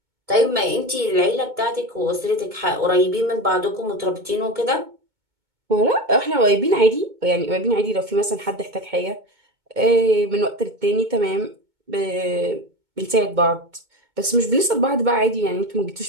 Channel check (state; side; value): late; left; 2.2 ms